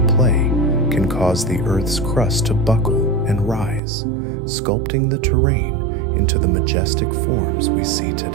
play can cause the Earth's crust to buckle and rise, sculpting the terrain into the majestic forms we see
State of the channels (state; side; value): drops out; left; at 3.8 s